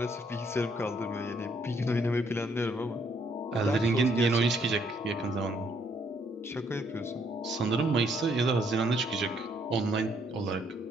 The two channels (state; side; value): normal; both; correlation 0.69